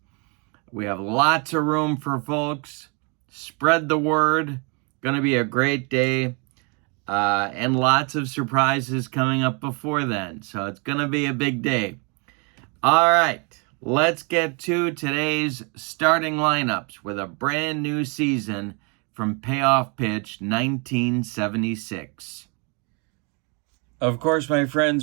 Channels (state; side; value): quieter; left; 33.5 dB